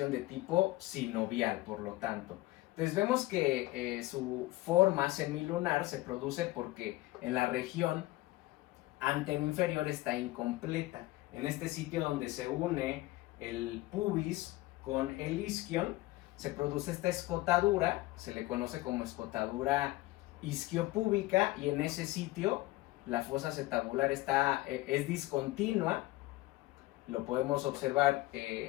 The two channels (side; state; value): right; quieter; 19.1 dB